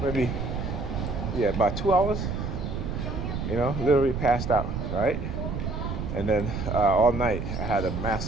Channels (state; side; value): noise; right; rumble, 4 dB below the sound